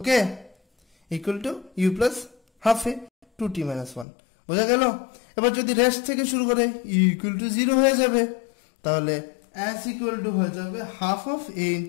equal to u plus half A 2t minus 1। বোঝা গেল? এবার যদি রেস্ট থেকে শুরু করে u equal to 0 হয়ে যাবে, তাহলে s equal to হয়ে যাবে half of a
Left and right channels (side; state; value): right; drops out; at 4.0 s